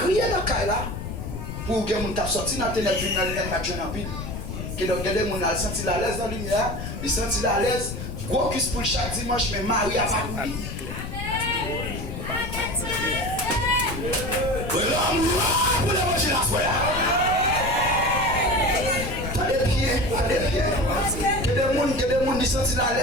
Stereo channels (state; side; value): noise; left; rumble, 7 dB below the sound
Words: dans le cas là, pour que mon tape sorti dans la ténèbre, dans la lumière, que donc, des gens ont senti la l'aise dans la lumière, ils senti la l'aise. Gros cuisse pour chaque dimanche, mais Marie a pas couru. Pour les manger la foi. T'as des pieds. Que des gens qui sentent la